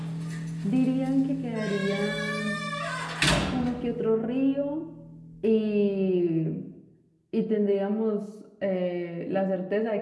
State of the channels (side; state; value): both; identical; correlation 1.00